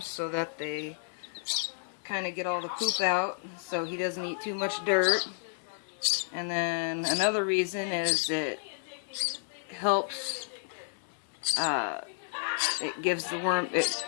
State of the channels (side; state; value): right; silent; digital silence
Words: so that they kind of get all the poop out, so he doesn't eat too much dirt. And then another reason is it helps, it gives the worm, it